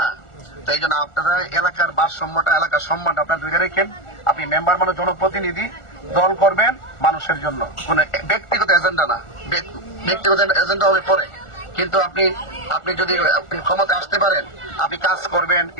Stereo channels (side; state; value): right; late; 1.4 ms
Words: তো এই জন্য আপনারা এলাকার ভারসাম্যটা, এলাকার সম্মানটা আপনার ধরে রেখেন। আপনি মেম্বার মানে জনপ্রতিনিধি, দল করবেন মানুষের জন্য, কোন ব্যক্তিগত এজেন্ডা না। ব্যক্তিগত এজেন্ডা হবে পরে, কিন্তু আপনি যদি ক্ষমতা আসতে পারেন, আপনি কাজ করবেন,